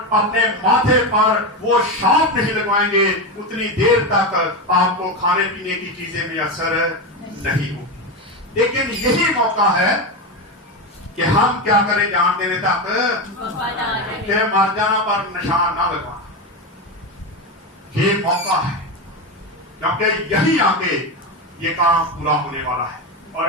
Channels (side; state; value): both; normal; correlation 0.15